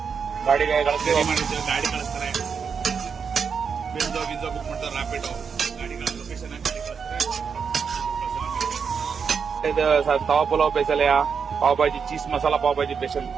ಗಾಡಿಗೆ ಕಳಿಸ್ತೀವಿ, ಮಾಡಿರ್ತೀವಿ, ಗಾಡಿ ಕಳಿಸ್ತಾರೆ. ಬಿಂದೋ ಬುಕ್ ಮಾಡ್ತಾರೆ, ರ್ಯಾಪಿಡೋ ಗಾಡಿಗಳ ಲೊಕೇಶನ್ ಗಾಡಿ ಕಳಿಸ್ತಾರೆ. ಇದು tawa pulao special, pav bhaji, cheese masala pav bhaji special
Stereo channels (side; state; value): left; quieter; 6.2 dB